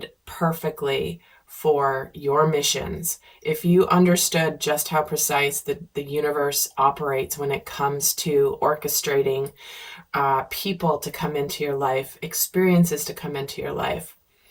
perfectly for your missions. If you understood just how precise the universe operates when it comes to orchestrating people to come into your life, experiences to come into your life,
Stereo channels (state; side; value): identical; both; correlation 1.00